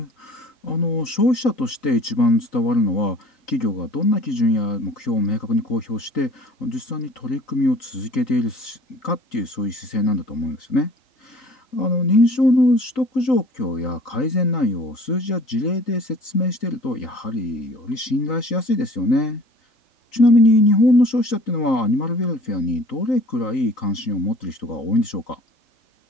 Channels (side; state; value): right; late; 3.9 ms